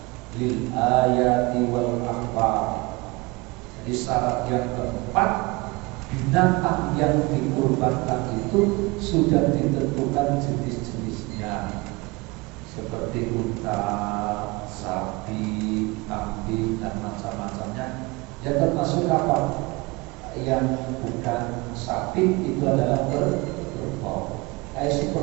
lil ayati wal akhbar. Jadi syarat yang keempat, binatang yang dikurbankan itu sudah ditentukan jenis-jenisnya, seperti unta, sapi, kambing dan macam-macamnya. Ya termasuk apa? Yang bukan sapi itu adalah kerbau. Kayak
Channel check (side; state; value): left; quieter; 24.5 dB